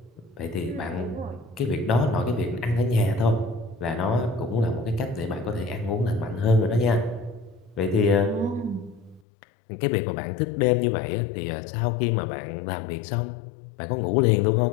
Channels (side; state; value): right; drops out; at 9.2 s